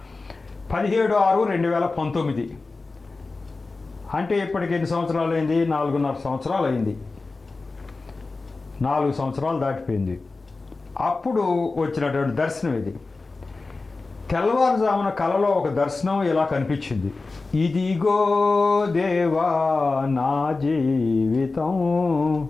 17/6/2019. అంటే ఇప్పటికి ఎన్ని సంవత్సరాలు అయింది? 4.5 సంవత్సరాలు అయింది. 4 సంవత్సరాలు దాటిపోయింది. అప్పుడు వచ్చినటువంటి దర్శనం ఇది. తెల్లవారుజామున కలలో ఒక దర్శనం ఇలా కనిపించింది. ఇదిగో దేవా నా జీవితం,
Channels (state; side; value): quieter; right; 3.7 dB